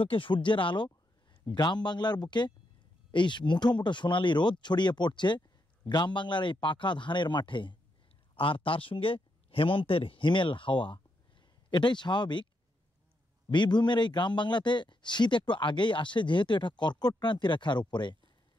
সূর্যের আলো, গ্রাম বাংলার বুকে এই মুঠো মুঠো সোনালি রোদ ছড়িয়ে পড়ছে গ্রাম বাংলার এই পাকা ধানের মাঠে, আর তার সঙ্গে হেমন্তের হিমেল হাওয়া। এটাই স্বাভাবিক। বীরভূমের এই গ্রাম বাংলাতে শীত একটু আগেই আসে, যেহেতু এটা কর্কট ক্রান্তি রেখার উপরে।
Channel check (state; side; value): normal; both; correlation 0.81